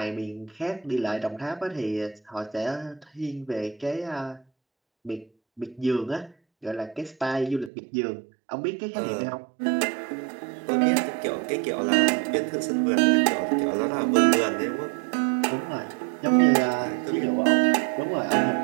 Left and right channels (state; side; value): drops out; left; at 7.7 s